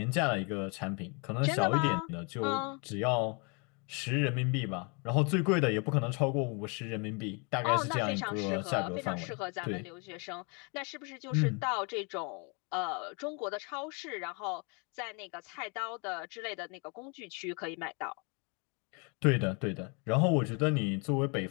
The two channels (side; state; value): right; quieter; 33.5 dB